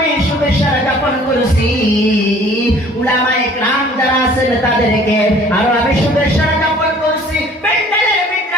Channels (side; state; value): both; normal; correlation 0.53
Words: শুভেচ্ছা জ্ঞাপন করেছি উলামায়ে কেরাম যারা আছেন তাদেরকে, আরো আমি শুভেচ্ছা জ্ঞাপন করছি প্যান্ডেলের